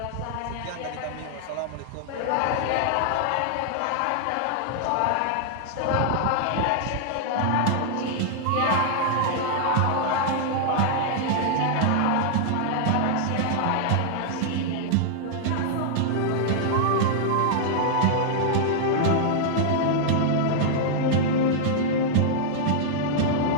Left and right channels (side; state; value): both; different; correlation -0.01